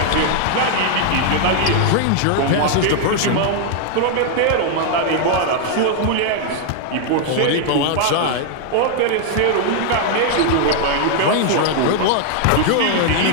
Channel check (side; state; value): both; different; correlation 0.00